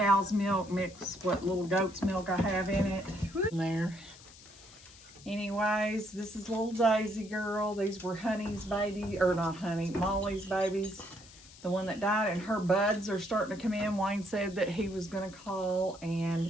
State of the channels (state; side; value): noise; left; hiss, 21 dB below the sound